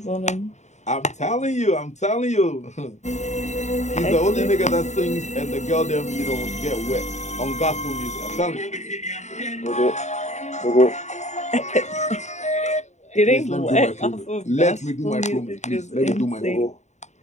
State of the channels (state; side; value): late; right; 0.34 ms